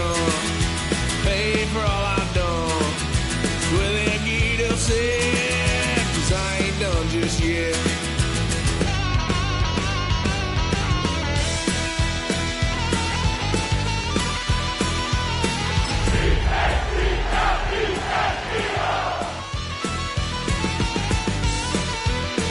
Pay for all I've done. Well, then get upset, 'cause I ain't done just yet.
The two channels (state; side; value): identical; both; correlation 1.00